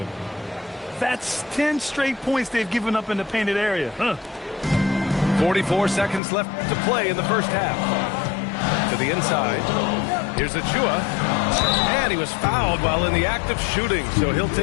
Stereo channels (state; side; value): drops out; right; at 6.2 s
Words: That's 10 straight points they've given up in the painted area. 44 seconds left to play in the first half. To the inside. Here's Achua. And he was fouled while in the act of shooting, so he'll